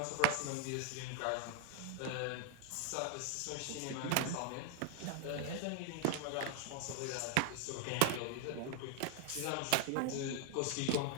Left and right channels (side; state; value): both; different; correlation 0.00